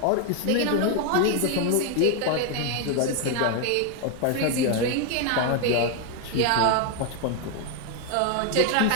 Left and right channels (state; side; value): different; both; correlation 0.01